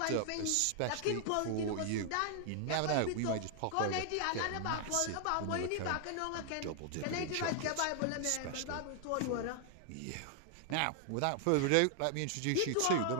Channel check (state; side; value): different; both; correlation 0.00